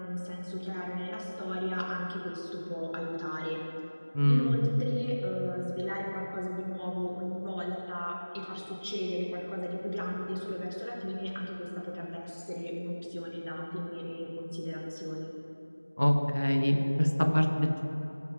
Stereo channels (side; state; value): both; inverted; correlation -1.00